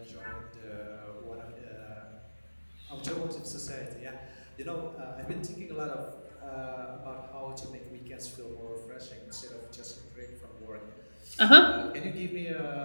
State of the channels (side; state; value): both; inverted; correlation -1.00